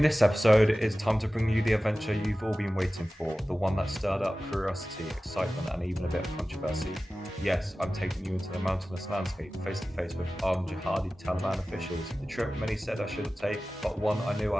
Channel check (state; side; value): normal; both; correlation 0.96